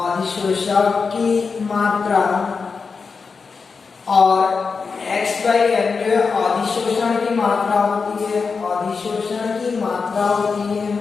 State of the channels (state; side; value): quieter; right; 5.0 dB